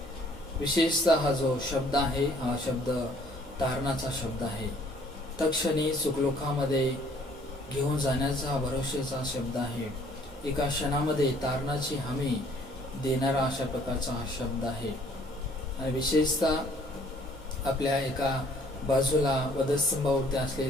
विशेषतः हा जो शब्द आहे हा शब्द तारणाचा शब्द आहे. तत्क्षणी सुखलोकामध्ये घेऊन जाण्याचा हा भरोशाचा शब्द आहे. एका क्षणामध्ये तारणाची हमी देणारा अशा प्रकारचा हा शब्द आहे. आणि विशेषतः आपल्या एका बाजूला वधस्तंभावरती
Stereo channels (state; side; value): normal; both; correlation 0.59